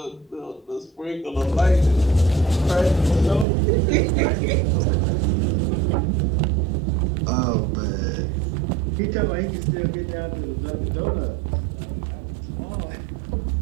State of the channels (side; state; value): left; drops out; at 3.5 s